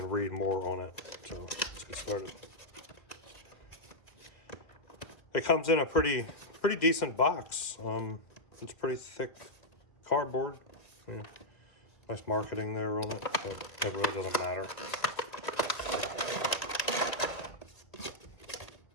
read more on it. So let's get started. It comes in a pretty decent box. It's pretty thick cardboard. Yeah. Nice marketing there on it, but it really doesn't matter.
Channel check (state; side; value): late; right; 1.7 ms